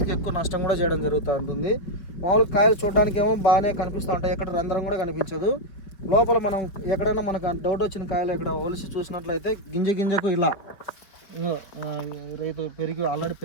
ఎక్కువ నష్టం కూడా చేయడం జరుగుతూ ఉంటుంది. మామూలుగా కాయలు చూడడానికి ఏమో బాగానే కనిపిస్తూ ఉంటాయి, ఎక్కడ రంధ్రం కూడా కనిపించదు. లోపల మనం ఎక్కడైనా మనకు డౌట్ వచ్చిన కాయలు ఇక్కడ ఒలిసి చూసినట్లయితే గింజకు ఇలా రైతు ఆల్రెడీ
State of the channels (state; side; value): late; right; 5.0 ms